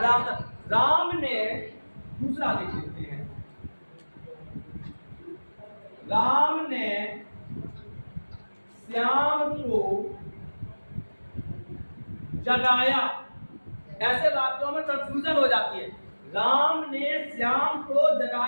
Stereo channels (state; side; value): inverted; both; correlation -1.00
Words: राम ने, दूसरा देख लेते हैं, राम ने श्याम को जगाया। ऐसे वाक्यों में कंफ्यूजन हो जाती है। राम ने श्याम को